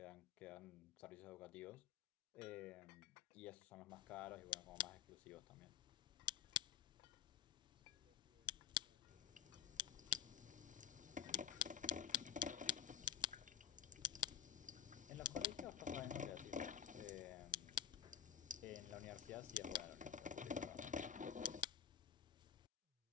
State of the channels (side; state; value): right; quieter; 9.2 dB